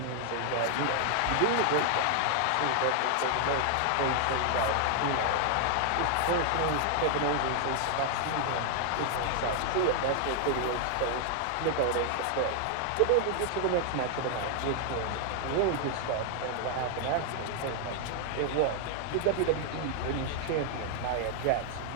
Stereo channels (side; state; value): both; different; correlation 0.00